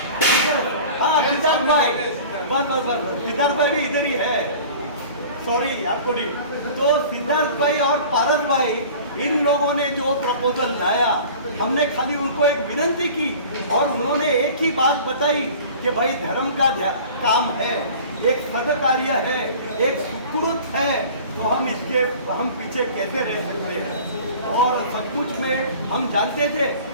हाँ सिद्धार्थ भाई, बस सिद्धार्थ भाई भी इधर ही है, सॉरी आपको नहीं। तो सिद्धार्थ भाई और पारस भाई, इन लोगों ने जो प्रपोजल लाया, हमने खाली उनको एक विनती की और उन्होंने एक ही बात बताई कि भाई धर्म का काम है, एक सदकार्य है, एक सुकृत है, तो हम पीछे कैसे रह सकते हैं। और सचमुच में हम जानते थे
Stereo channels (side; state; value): both; inverted; correlation -0.42